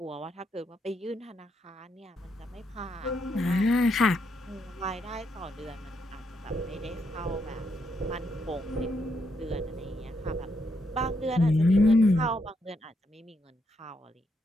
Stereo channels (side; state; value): both; normal; correlation 0.78